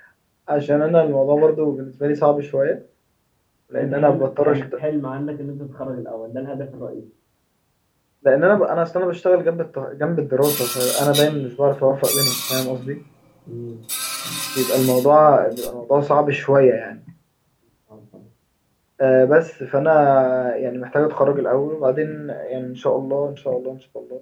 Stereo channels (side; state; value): both; identical; correlation 1.00